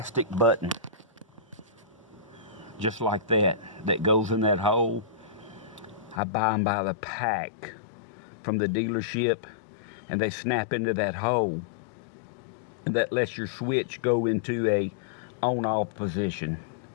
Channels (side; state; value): right; drops out; at 6.2 s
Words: button just like that goes in that hole. I buy them by the pack from the dealership, and they snap into that hole, and that lets your switch go into a on-off position.